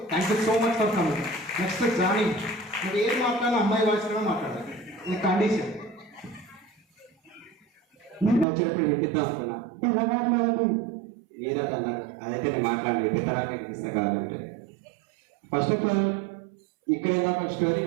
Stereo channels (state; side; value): drops out; left; at 8.5 s